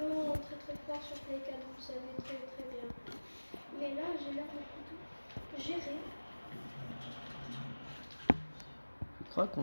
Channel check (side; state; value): both; inverted; correlation -1.00